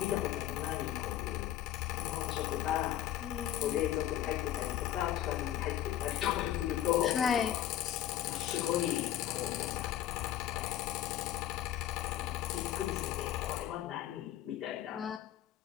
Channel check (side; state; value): right; quieter; 12.1 dB